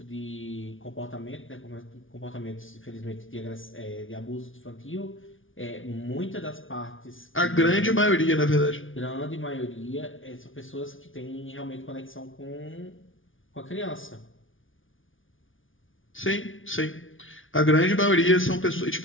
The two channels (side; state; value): right; late; 0.57 ms